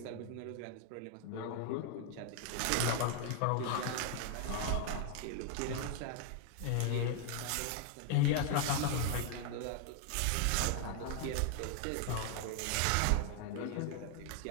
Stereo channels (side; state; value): both; different; correlation 0.00